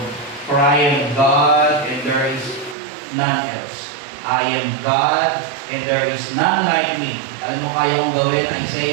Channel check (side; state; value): left; drops out; at 2.8 s